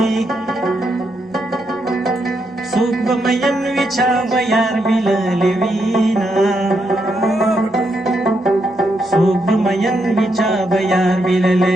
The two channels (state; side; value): normal; both; correlation 0.80